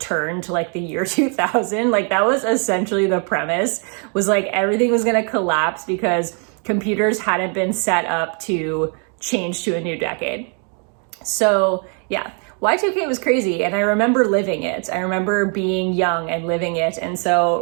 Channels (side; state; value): left; quieter; 39.7 dB